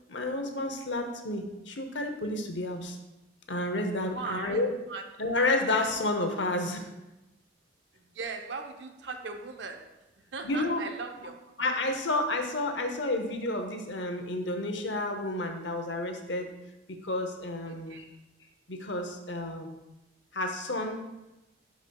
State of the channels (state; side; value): normal; both; correlation 0.04